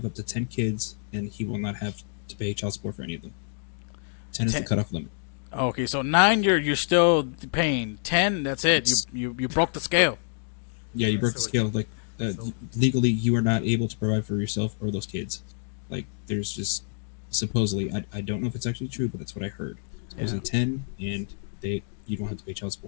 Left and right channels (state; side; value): silent; right; digital silence